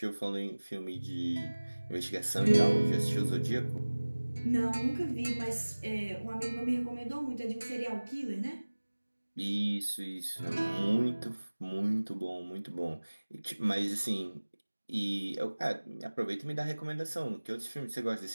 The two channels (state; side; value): inverted; both; correlation -1.00